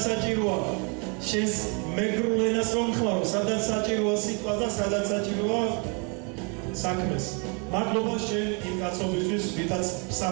საჭიროა, შენს მეგრულ ენას რომ ხმარო, სადაც საჭიროა სიტყვას და სადაც საჭიროა საქმეს. მადლობა შენ იმ კაცობისთვის, ვითაც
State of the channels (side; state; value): left; quieter; 35.1 dB